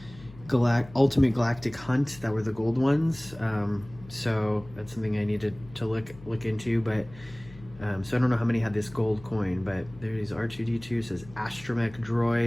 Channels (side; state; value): left; noise; hum, 19 dB below the sound